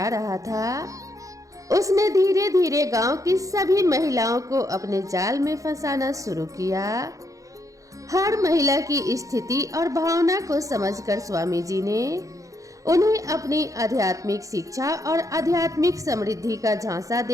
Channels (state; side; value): late; left; 0.16 ms